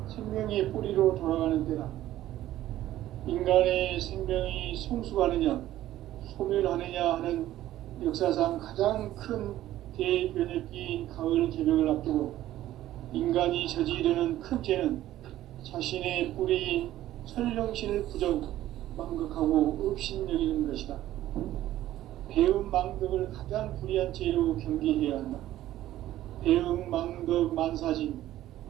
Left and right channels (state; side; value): quieter; left; 13.9 dB